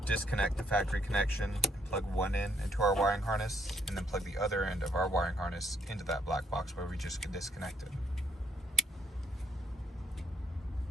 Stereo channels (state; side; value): normal; both; correlation 0.68